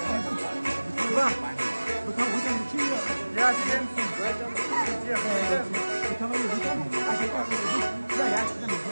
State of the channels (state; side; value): inverted; both; correlation -1.00